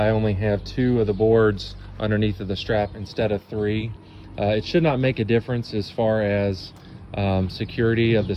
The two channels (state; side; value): identical; both; correlation 1.00